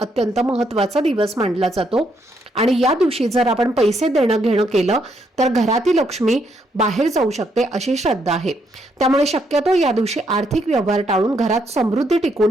महत्त्वाचा दिवस मानला जातो आणि या दिवशी जर आपण पैसे देणं घेणं केलं तर घरातील लक्ष्मी बाहेर जाऊ शकते अशी श्रद्धा आहे. त्यामुळे शक्यतो या दिवशी आर्थिक व्यवहार टाळून घरात समृद्धी टिकवून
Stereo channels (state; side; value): normal; both; correlation 0.75